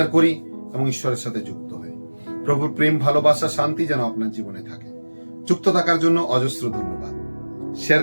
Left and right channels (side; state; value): both; inverted; correlation -1.00